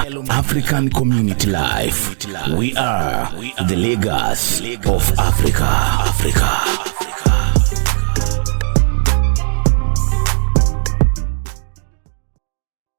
African Community Life. We are the legacy of Africa.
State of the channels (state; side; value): silent; left; digital silence